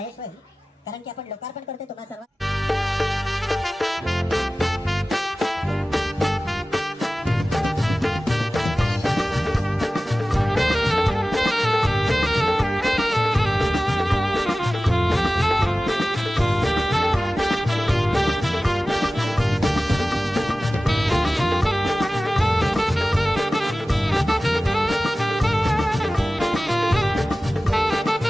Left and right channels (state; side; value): normal; both; correlation 0.96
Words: होईल कारण की आपण लोकार्पण करतोय तुम्हा सर्व